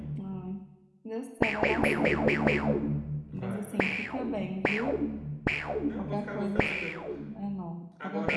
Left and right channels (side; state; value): both; identical; correlation 1.00